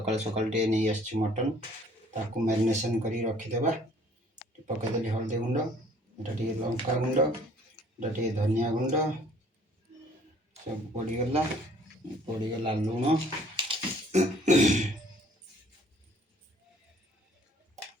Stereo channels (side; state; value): both; normal; correlation 0.57